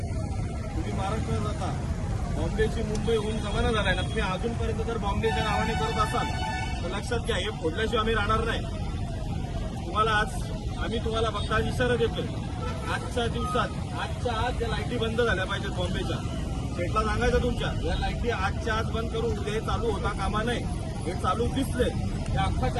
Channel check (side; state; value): both; identical; correlation 1.00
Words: तुम्ही महाराष्ट्रात राहता. बॉम्बेची मुंबई होऊन जमाना झालाय ना. तुम्ही अजूनपर्यंत जर बॉम्बेच्या नावाने करत असाल तर लक्षात घ्या, हे फोडल्याशिवाय आम्ही राहणार नाही. तुम्हाला आम्ही तुम्हाला फक्त आज इशारा देतोय. आजच्या दिवसात आजच्या आज या लाईटी बंद झाल्या पाहिजेत बॉम्बेच्या. शेटला सांगायचं तुमच्या या लाईटी आजच्या आज बंद करून उद्या हे चालू होता कामा नाही. हे चालू दिसले या